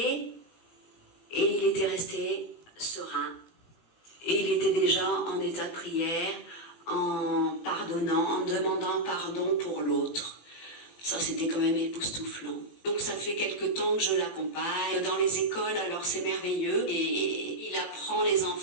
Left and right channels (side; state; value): right; late; 18 ms